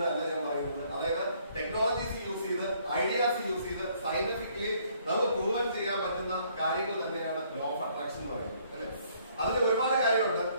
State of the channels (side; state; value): both; inverted; correlation -0.64